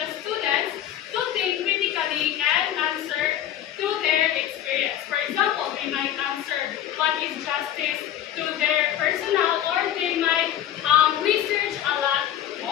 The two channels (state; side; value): quieter; right; 11.2 dB